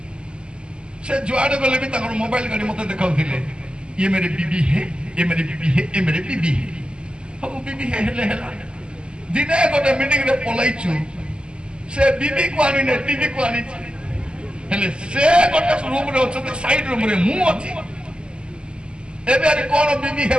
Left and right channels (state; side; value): late; left; 0.050 ms